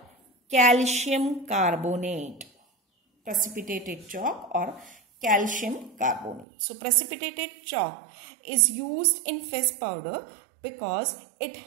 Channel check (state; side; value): drops out; left; at 6.5 s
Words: calcium carbonate. Precipitated chalk or calcium carbonate. So precipitated chalk is used in face powder because it